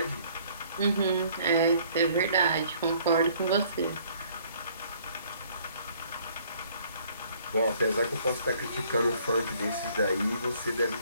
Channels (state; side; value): inverted; both; correlation -0.60